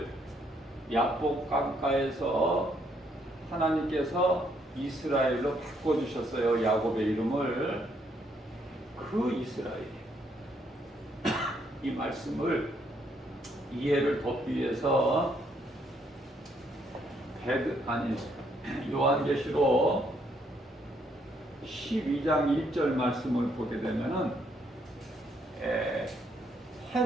야복 강가에서 하나님께서 이스라엘로 바꿔주셨어요. 야곱의 이름을. 그 이스라엘. 이 말씀을 이해를 돕기 위해서 요한계시록 12장 1절 말씀을 보게 되면은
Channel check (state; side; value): normal; both; correlation 0.71